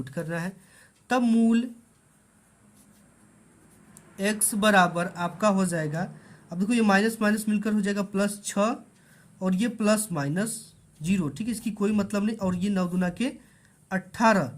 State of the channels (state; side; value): identical; both; correlation 1.00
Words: करना है। तब मूल x बराबर आपका हो जाएगा, अब देखो ये माइनस माइनस मिलकर हो जाएगा +6, और ये +-0, ठीक है, इसकी कोई मतलब नहीं, और ये 9 दूना के 18,